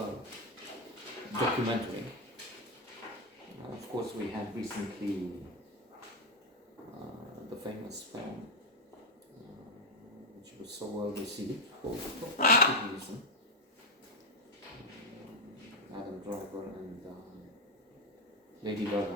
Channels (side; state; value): both; normal; correlation 0.05